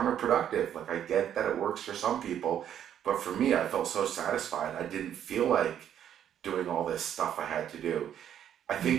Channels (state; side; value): quieter; left; 9.9 dB